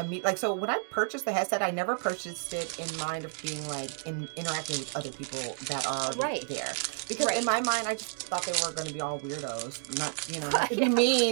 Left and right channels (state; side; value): silent; left; 57 dB below the other